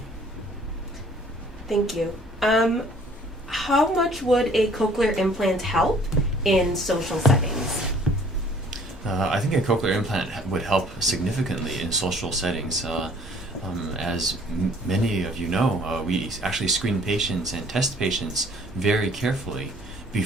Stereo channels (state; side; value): normal; both; correlation 0.56